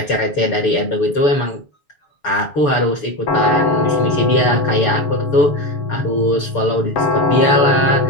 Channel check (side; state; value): right; late; 6.9 ms